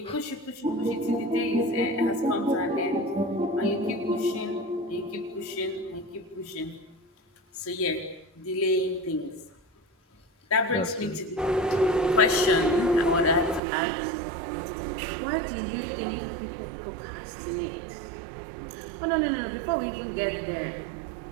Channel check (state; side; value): drops out; left; at 13.6 s